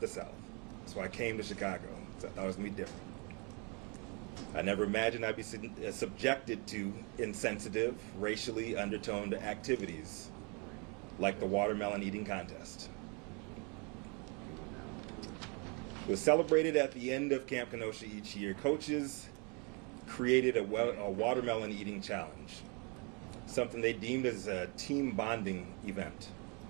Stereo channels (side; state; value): left; quieter; 33.0 dB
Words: the South. So I came to Chicago. So I thought it was going to be different. I never imagined I'd be subjected to insensitive, racially undertoned activities like the watermelon eating contest. It was celebrated at the end of Camp Kenosha each year. Coaches created a watermelon eating challenge, something they deemed as a team bonding event.